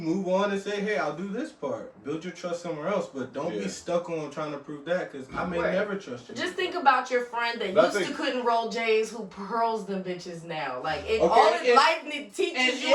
on and say, hey, I'll do this part. Build your trust somewhere else, but don't Yeah. be stuck on trying to prove that, because I may Right. never trust you. Just think about your friend that But I used to think- couldn't roll J's who pearls them bitches now. Like, Okay, all his and- life teaches and- you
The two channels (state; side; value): identical; both; correlation 1.00